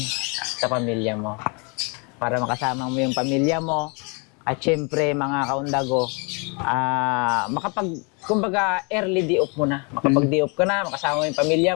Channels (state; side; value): quieter; right; 32.9 dB